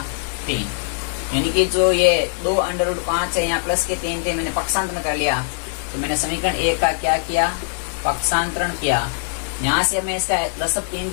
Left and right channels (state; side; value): silent; right; digital silence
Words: 3, यानी कि जो ये 2√5 है, यहाँ प्लस के 3 थे, मैंने पक्षांतरण कर लिया। तो मैंने समीकरण 1 का क्या किया? पक्षांतरण किया। यहाँ से मैं इसका लसअप 3